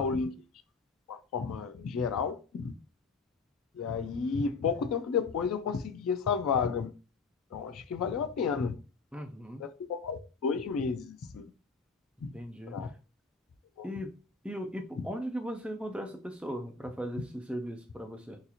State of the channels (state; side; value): quieter; right; 4.6 dB